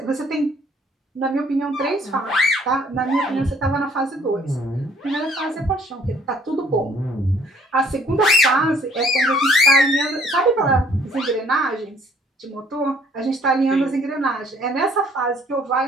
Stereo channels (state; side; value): normal; both; correlation 0.59